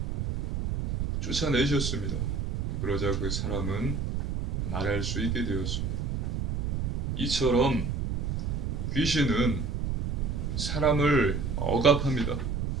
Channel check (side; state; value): right; noise; rumble, 1 dB below the sound